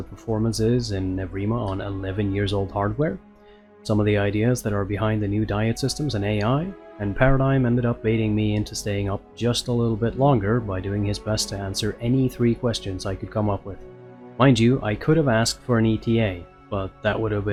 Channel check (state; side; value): identical; both; correlation 1.00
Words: performance is in EVRIMA on 11 years old hardware, some of the ideas that are behind the new diet systems and AI, and Paradigm ended up baiting me into staying up just a little bit longer by doing his best to answer any 3 questions I could come up with. Mind you, I could have asked for an ETA, but that would have